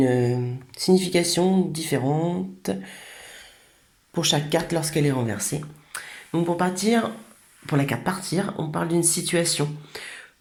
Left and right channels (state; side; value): identical; both; correlation 1.00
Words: signification différente pour chaque carte lorsqu'elle est renversée. Donc pour la carte partir, on parle d'une situation